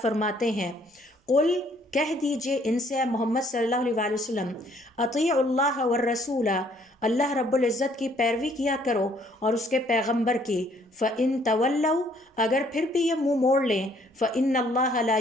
فرماتے ہیں، قل، کہہ دیجئے ان سے محمد صلی اللہ علیہ وسلم، اطیعوا اللہ والرسول، اللہ رب العزت کی پیروی کیا کرو اور اس کے پیغمبر کی، فَإِن تَوَلَّوْا، اگر پھر بھی یہ منہ موڑ لیں، فَإِنَّ اللَّهَ لَا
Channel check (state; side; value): normal; both; correlation 0.64